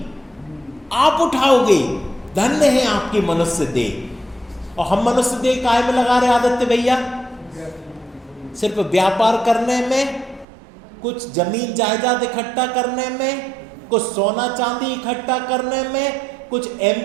आप उठाओगे, धन्य है आपकी मनुष्य देह। और हम मनुष्य देह काहे में लगा रहे आदित्य भैया? सिर्फ व्यापार करने में, कुछ जमीन जायदाद इकट्ठा करने में, कुछ सोना चांदी इकट्ठा करने में, कुछ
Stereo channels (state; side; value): drops out; left; at 10.5 s